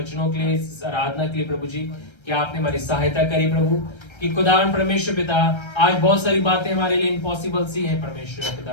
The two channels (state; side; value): late; right; 1.3 ms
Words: के लिए, इस आराधना के लिए प्रभु जी, कि आपने हमारी सहायता करी प्रभु, कि खुदावन परमेश्वर पिता आज बहुत सारी बातें हमारे लिए इम्पॉसिबल सी है परमेश्वर